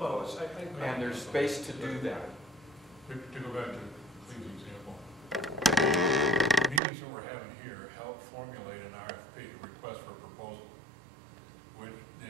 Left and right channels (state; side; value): drops out; left; at 6.8 s